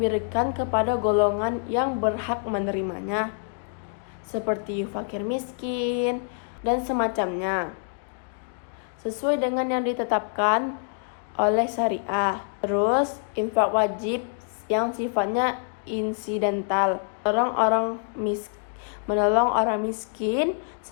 kepada golongan yang berhak menerimanya, seperti fakir miskin dan semacamnya, sesuai dengan yang ditetapkan oleh syariah. Terus infak wajib yang sifatnya insidental, menolong orang miskin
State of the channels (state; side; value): silent; right; digital silence